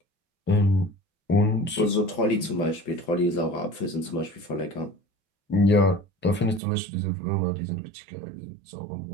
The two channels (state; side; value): drops out; left; at 6.6 s